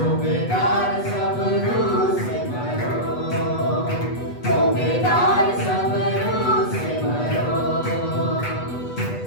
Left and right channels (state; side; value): late; right; 8.2 ms